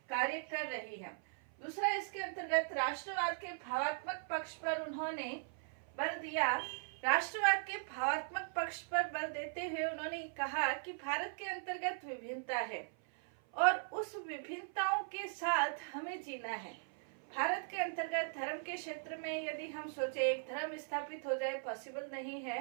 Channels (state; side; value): silent; left; 52 dB below the other